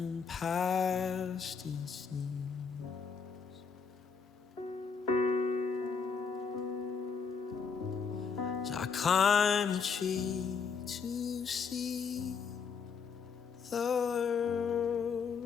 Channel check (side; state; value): right; quieter; 5.8 dB